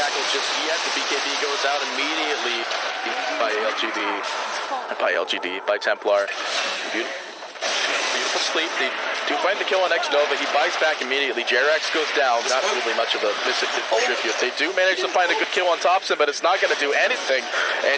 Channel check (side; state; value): both; identical; correlation 1.00